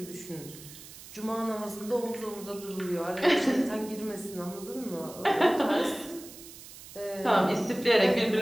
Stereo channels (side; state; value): right; noise; hiss, 16 dB below the sound